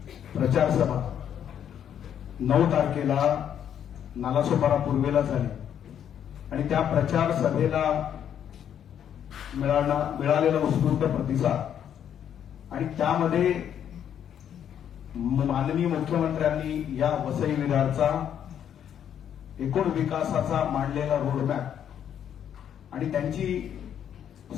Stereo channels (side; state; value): right; quieter; 9.3 dB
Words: प्रचार सभा 9 तारखेला नालासोपारा पूर्वेला झाली आणि त्या प्रचार सभेला मिळालेला उत्स्फूर्त प्रतिसाद आणि त्यामध्ये माननीय मुख्यमंत्र्यांनी या वसई विरारचा एकूण विकासाचा मांडलेला रोडमॅप आणि त्यांची